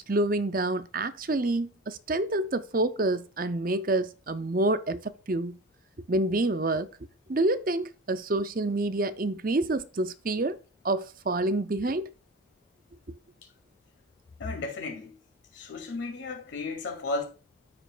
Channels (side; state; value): both; normal; correlation 0.31